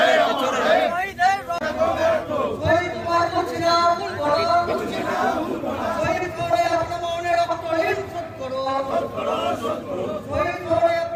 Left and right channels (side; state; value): both; identical; correlation 1.00